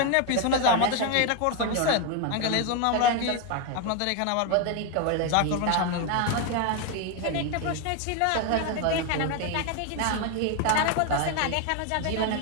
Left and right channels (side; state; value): both; different; correlation 0.01